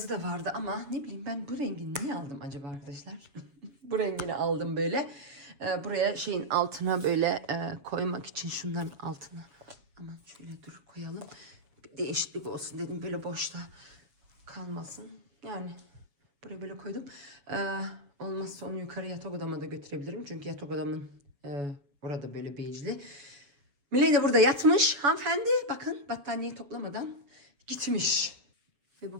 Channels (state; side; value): late; left; 7.4 ms